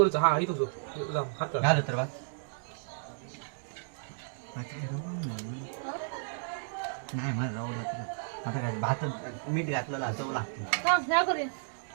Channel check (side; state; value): left; silent; digital silence